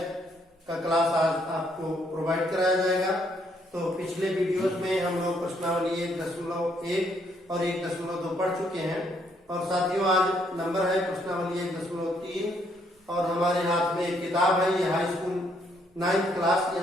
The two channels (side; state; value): both; normal; correlation 0.70